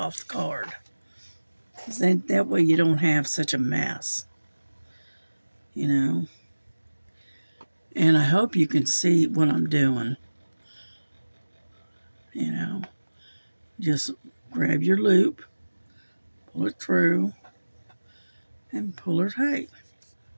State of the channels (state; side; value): inverted; both; correlation -1.00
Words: the card. Then that way you don't have such a mess, And I hope you can see what I'm doing. Just grab your loop, pull it through, and pull it tight.